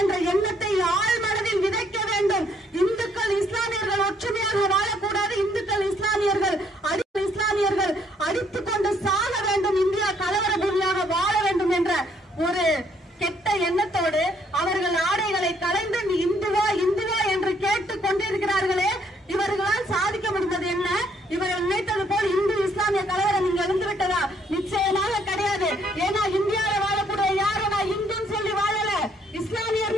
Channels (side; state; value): both; normal; correlation 0.68